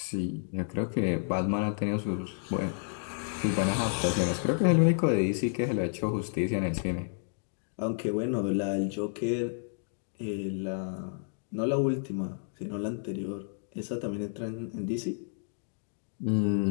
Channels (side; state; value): right; silent; digital silence